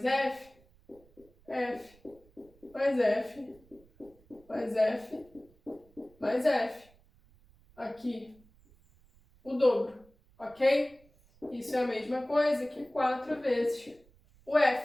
F, F mais F, mais F, mais F. Aqui, o dobro, ok? Isso é a mesma coisa que 4 vezes o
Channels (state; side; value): noise; right; rumble, 29 dB below the sound